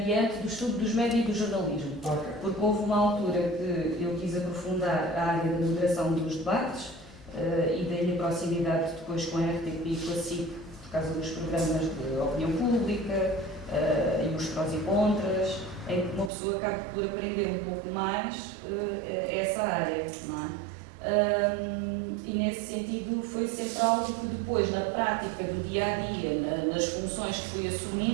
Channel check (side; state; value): left; drops out; at 16.3 s